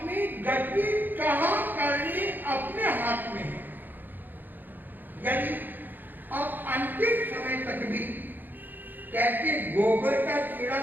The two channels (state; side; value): late; left; 0.089 ms